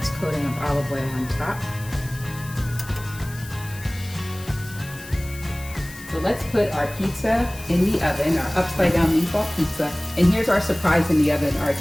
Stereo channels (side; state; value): left; noise; hiss, 17 dB below the sound